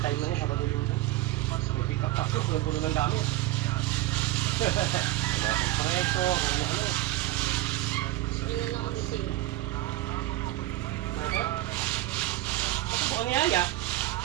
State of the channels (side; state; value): left; quieter; 16.7 dB